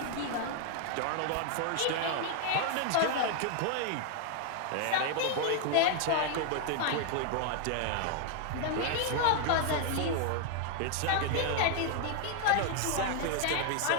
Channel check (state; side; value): different; both; correlation 0.00